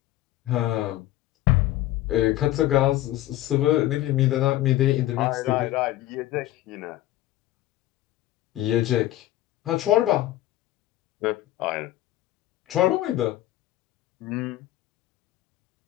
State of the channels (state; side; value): quieter; right; 15.0 dB